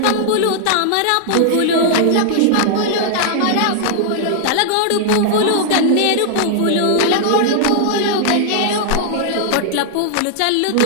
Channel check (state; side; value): different; both; correlation -0.01